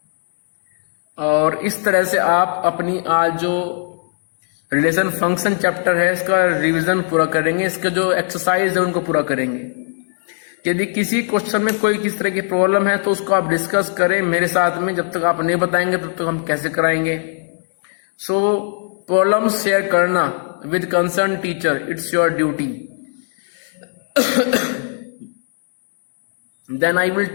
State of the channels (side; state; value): right; silent; 67 dB below the other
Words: और इस तरह से आप अपनी आज जो रिलेशन फंक्शन चैप्टर है इसका रिवीजन पूरा करेंगे, इसके जो एक्सरसाइज है उनको पूरा करेंगे। यदि किसी क्वेश्चन में कोई किस तरह की प्रॉब्लम है तो उसको आप डिस्कस करें मेरे साथ में, जब तक आप नहीं बताएंगे तब तक हम कैसे कराएंगे। सो प्रॉब्लम शेयर करना with concern teacher, it's your duty. Then I will